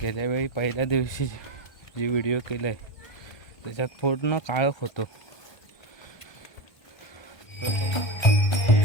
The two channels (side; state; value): right; late; 1.5 ms